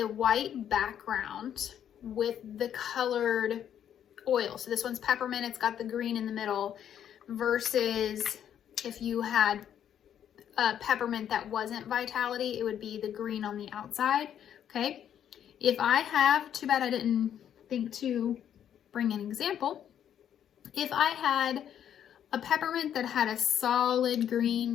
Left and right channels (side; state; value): right; quieter; 9.7 dB